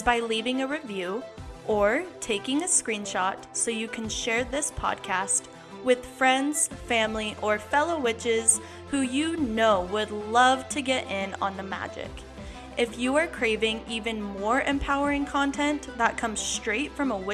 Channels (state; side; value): identical; both; correlation 1.00